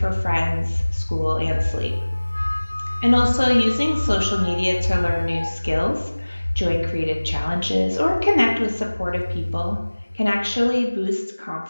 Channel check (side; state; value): both; inverted; correlation -1.00